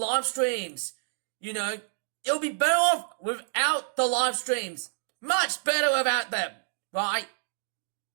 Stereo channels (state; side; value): silent; left; digital silence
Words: streams. It'll be better off without the live streams. Much better without them, right?